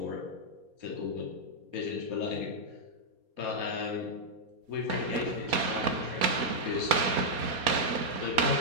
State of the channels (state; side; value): late; left; 4.2 ms